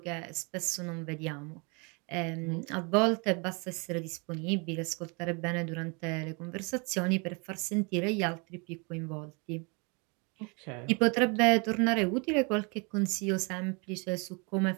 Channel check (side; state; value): left; quieter; 32.0 dB